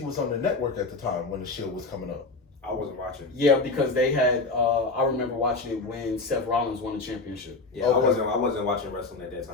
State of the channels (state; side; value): quieter; right; 3.6 dB